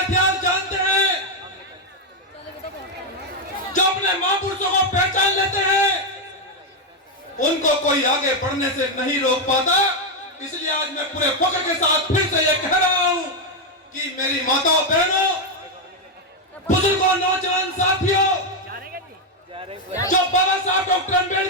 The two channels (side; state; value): both; normal; correlation 0.03